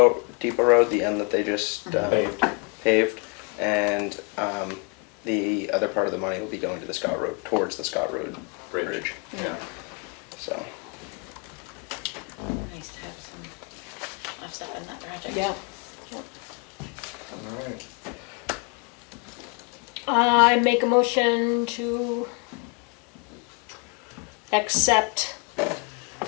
road, the end that they just paved, and the other part of the money will be going to the Scott Road, towards the Scott Road Bridge. Yeah. So nice to have some offset in that project. Yeah. All right. I make a motion to accept,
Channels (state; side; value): quieter; right; 31.9 dB